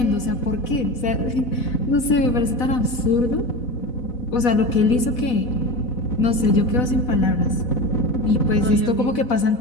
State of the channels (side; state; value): right; late; 4.1 ms